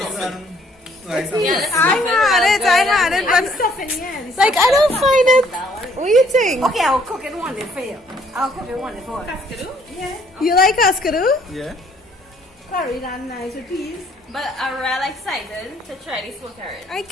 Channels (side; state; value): both; normal; correlation 0.64